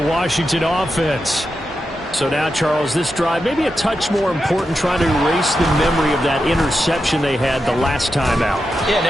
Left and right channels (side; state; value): both; normal; correlation 0.88